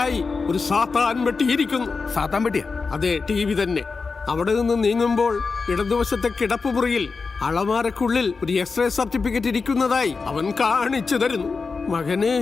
ഒരു സാത്താൻ വെട്ടിയിരിക്കുന്നു. സാത്താൻ വെട്ടിയ? അതെ, TV തന്നെ. അവിടെ നിന്ന് നീങ്ങുമ്പോൾ ഇടതുവശത്തെ കിടപ്പുമുറിയിൽ അളമാരക്കുള്ളിൽ ഒരു എക്സ്റേ സർട്ടിഫിക്കറ്റ് ഇരിക്കുന്നതായി അവൻ കാണിച്ചു തരുന്നു. മകനെ,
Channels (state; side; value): quieter; right; 4.6 dB